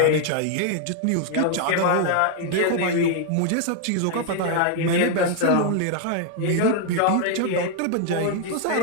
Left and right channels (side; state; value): both; different; correlation 0.00